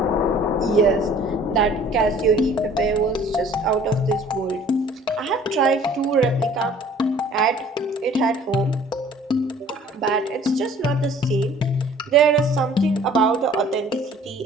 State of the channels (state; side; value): normal; both; correlation 0.52